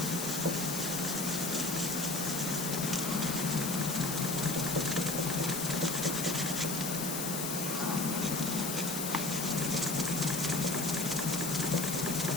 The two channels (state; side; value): noise; left; hiss, 3 dB below the sound